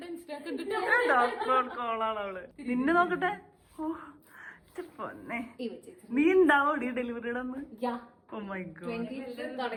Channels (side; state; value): both; identical; correlation 1.00